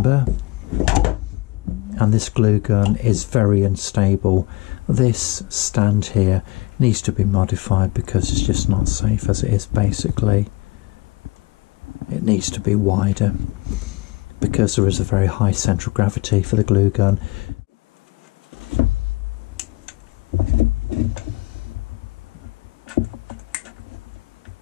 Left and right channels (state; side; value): quieter; right; 22.4 dB